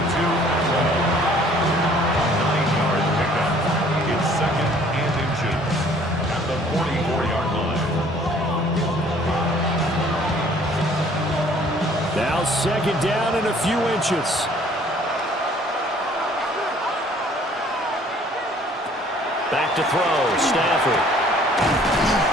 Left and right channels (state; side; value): normal; both; correlation 0.57